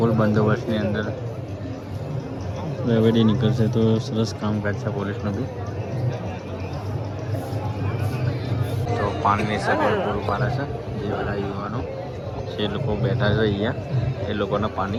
બંદોબસ્તની અંદર રેવડી નીકળશે. તો સરસ કામકાજ છે પોલીસનું બી. તો પાણીની સગવડ પૂરું પાડે છે. જે બધા યુવાનો જે લોકો બેઠા છે અહીંયા એ લોકોને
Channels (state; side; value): identical; both; correlation 1.00